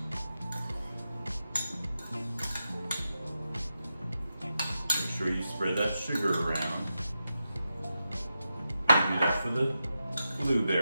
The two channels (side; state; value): both; inverted; correlation -0.89